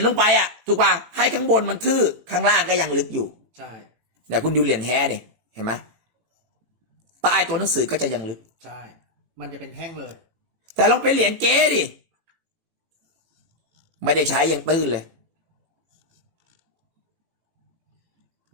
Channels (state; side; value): late; left; 18 ms